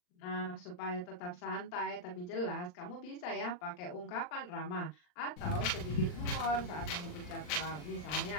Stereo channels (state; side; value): late; right; 39 ms